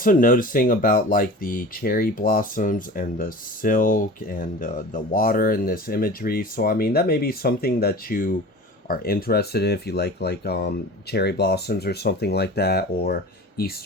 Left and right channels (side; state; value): both; normal; correlation 0.37